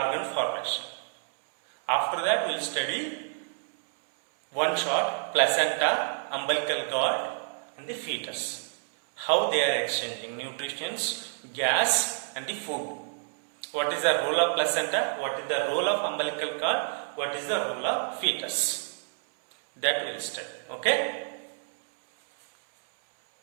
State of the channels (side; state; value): left; silent; 59 dB below the other